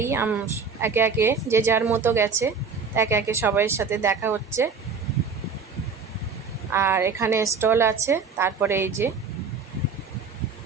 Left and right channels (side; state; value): left; quieter; 5.3 dB